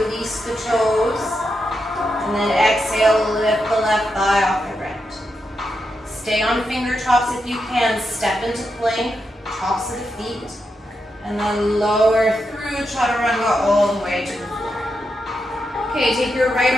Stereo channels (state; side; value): normal; both; correlation 0.85